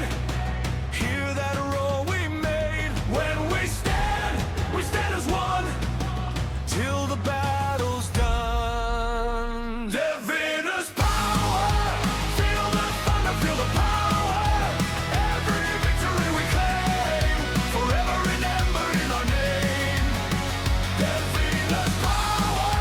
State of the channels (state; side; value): identical; both; correlation 1.00